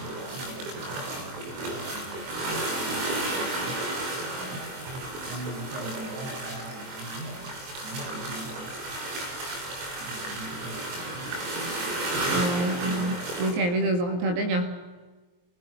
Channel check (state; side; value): late; left; 23 ms